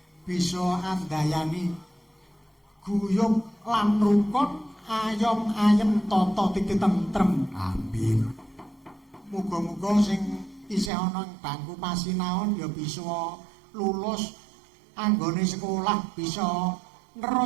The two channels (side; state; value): left; drops out; at 10.9 s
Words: bisa andayani guyub lan rukun ayom ayem tata titi tentrem. Amin. Muga-muga sing isih ana ing bangku pasinaon ya bisa lulus anggone sekolah, bisa